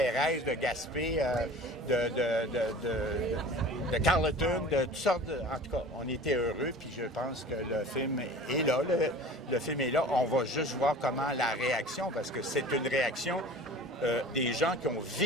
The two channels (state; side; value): normal; both; correlation 0.42